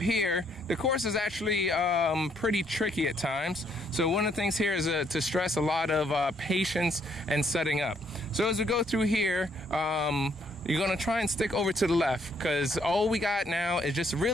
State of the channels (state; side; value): normal; both; correlation 0.69